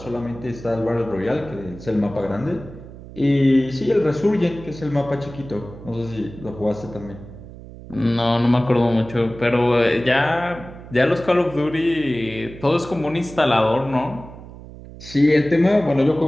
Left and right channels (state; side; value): noise; right; hum, 16 dB below the sound